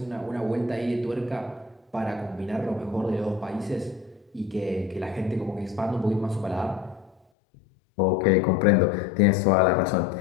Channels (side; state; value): right; drops out; at 7.2 s